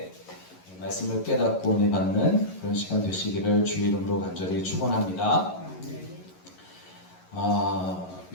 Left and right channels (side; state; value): right; late; 11 ms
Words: 말씀을 깨닫고 은혜 받는 그런 시간 되시기를 주의 이름으로 간절히 축원합니다.